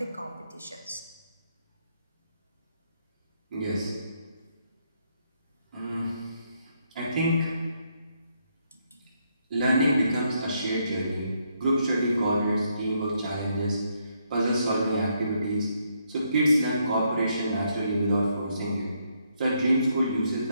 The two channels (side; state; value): both; inverted; correlation -0.75